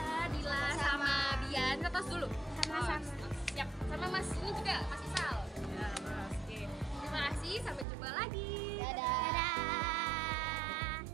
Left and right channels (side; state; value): left; drops out; at 7.9 s